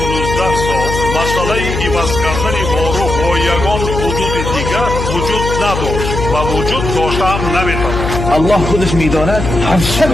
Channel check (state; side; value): noise; left; hum, 4 dB below the sound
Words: سال مسئله عوض کردن باروخ با یگان حدود دیگر وجود نداشت و وجود داشته هم نمی‌تواند. الله خودش میداند هر